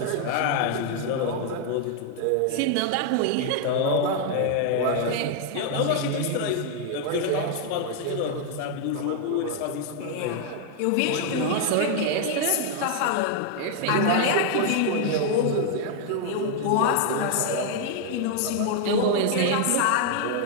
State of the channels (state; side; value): different; both; correlation 0.00